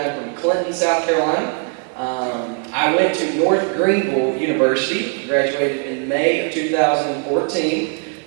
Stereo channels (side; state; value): left; quieter; 39.2 dB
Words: from Clinton, South Carolina. I went to North Greenville University, graduated in May of 2014.